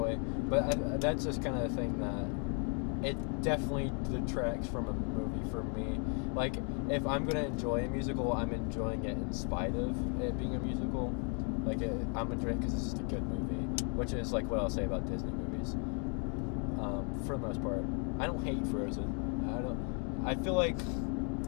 But that's just kind of a thing that it definitely detracts from a movie for me. Like, if I'm going to enjoy a musical, I'm enjoying it in spite of it being a musical. Like, I'm enjoying it because it's just a good movie. Which is, like, what I'll say about Disney movies. For the most part. I don't hate Frozen. I feel like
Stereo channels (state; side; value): quieter; right; 39.5 dB